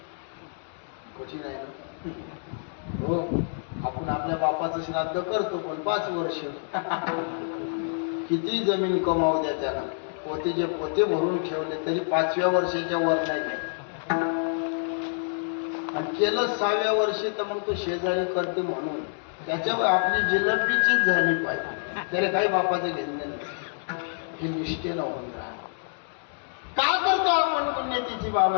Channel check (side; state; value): right; silent; digital silence